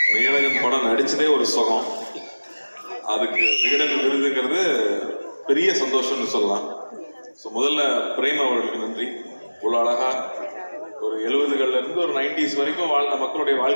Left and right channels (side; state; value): both; inverted; correlation -1.00